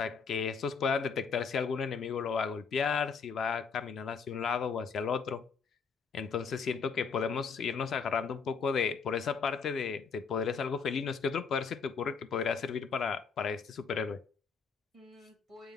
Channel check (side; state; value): right; quieter; 5.8 dB